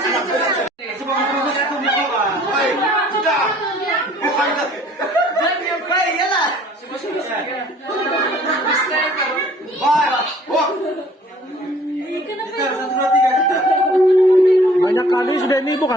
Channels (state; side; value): normal; both; correlation 0.55